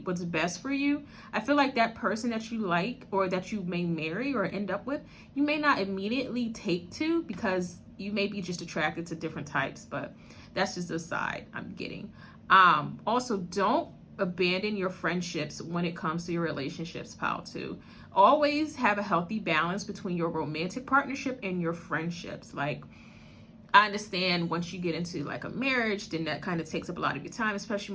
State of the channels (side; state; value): both; identical; correlation 1.00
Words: what's best for you. I feel like that person that you like, or that you may marry or end up with, you may not immediately take to, because you may be just attracted to different types, but that's just a side I'm getting. Also, don't abandon your friendships when it comes to your relationships, pal, too. Always have a healthy balance between your romantic partnership and your friendships. Like, I understand once you get into like a marriage, then that kind of takes up a lot of your time, especially